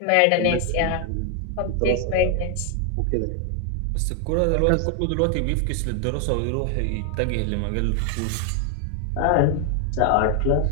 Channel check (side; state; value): both; different; correlation 0.00